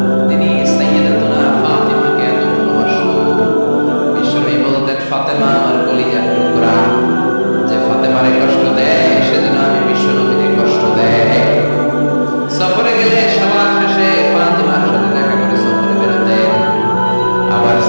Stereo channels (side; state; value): both; inverted; correlation -1.00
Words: তিনি সাইয়্যিদাতুনা ফাতিমাকে এত ভালোবাসতো। বিশ্বনবী বলতেন, ফাতেমা আমার কলিজার টুকরা, যে ফাতেমারে কষ্ট দেয় সেজন্য আমি বিশ্বনবীকে কষ্ট দেয়। সফরে গেলে সবার শেষে ফাতিমার সাথে দেখা করে সফরে বেরোতেন। আবার